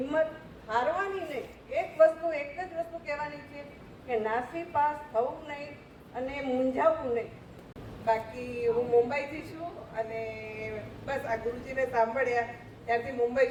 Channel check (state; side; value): identical; both; correlation 1.00